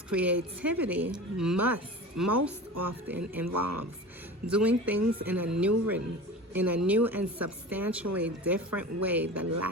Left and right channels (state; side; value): normal; both; correlation 0.34